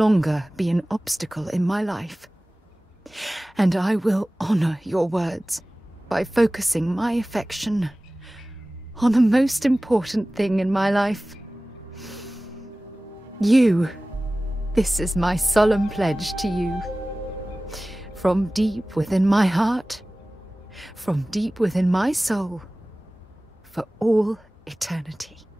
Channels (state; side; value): normal; both; correlation 0.98